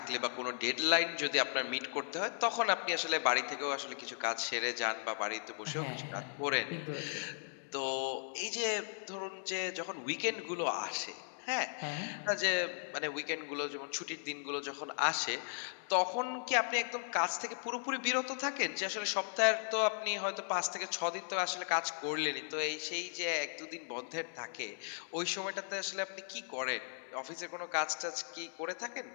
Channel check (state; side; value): silent; right; digital silence